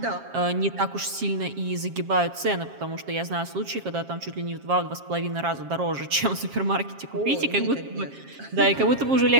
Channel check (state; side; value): late; left; 7.4 ms